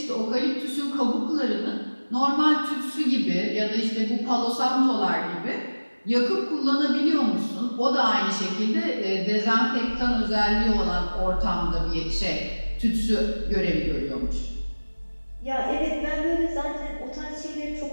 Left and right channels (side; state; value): both; inverted; correlation -1.00